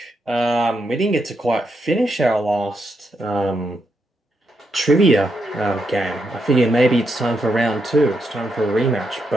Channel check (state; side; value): normal; both; correlation 0.81